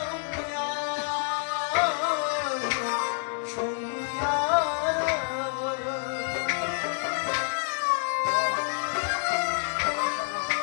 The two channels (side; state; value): right; silent; 56 dB below the other